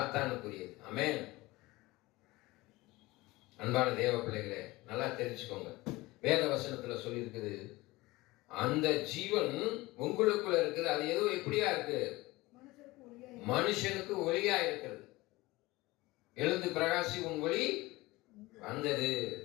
ஆமென். அன்பான தேவ பிள்ளைகளே, நல்லா தெரிஞ்சுக்கோங்க. வேத வசனத்துல சொல்லி இருக்குது, அந்த ஜீவன் உங்களுக்குள்ள இருக்குது. அது எதுவும் எப்படியா இருக்கு? மனுஷனுக்கு ஒளியா இருக்கிறது. எழுந்து பிரகாசி உன் ஒளி வந்தது.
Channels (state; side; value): quieter; right; 20.5 dB